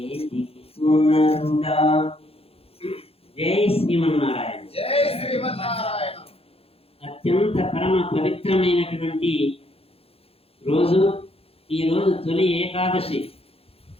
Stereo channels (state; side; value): late; right; 0.28 ms